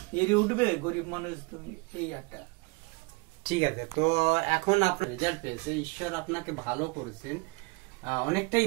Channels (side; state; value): left; quieter; 28.4 dB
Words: এড়ে উঠবে গরিব মানুষ তুমি, এই একটা। ঠিক আছে, তো এখন আপনার রেজাল্ট পেয়েছে, ঈশ্বর আপনাকে ভালো করেছেন, অনেকটাই